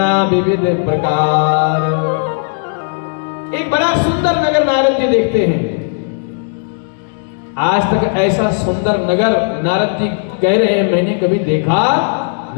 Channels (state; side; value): silent; right; 70 dB below the other